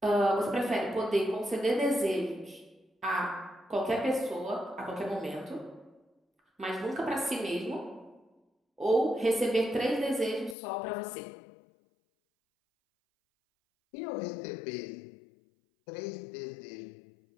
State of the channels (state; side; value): drops out; right; at 10.6 s